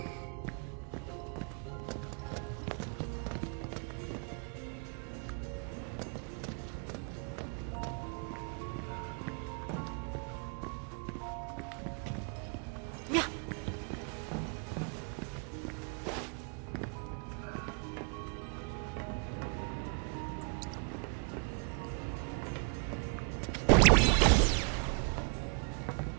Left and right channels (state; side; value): quieter; left; 37.2 dB